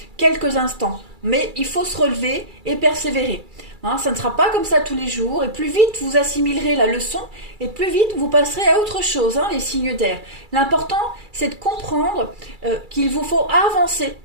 quelques instants. Mais il faut se relever et persévérer. Hein, ça ne sera pas comme ça tous les jours, et plus vite vous assimilerez la leçon, et plus vite vous passerez à autre chose, hein, les signes d'air. L'important, c'est de comprendre qu'il vous faut avancer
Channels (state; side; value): late; left; 2.3 ms